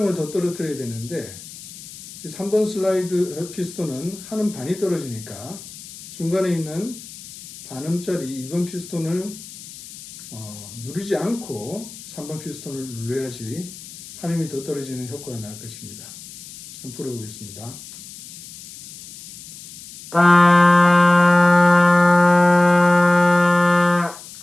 더 떨어뜨려야 되는데 3번 슬라이드 피스톤은 한 음 반이 떨어지니까 중간에 있는 반음짜리 2번 피스톤을 누르지 않고 3번 피스톤을 눌러야지 한 음이 더 떨어지는 효과가 나올 것입니다. 한번 풀어보겠습니다.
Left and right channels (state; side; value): noise; left; hiss, 16 dB below the sound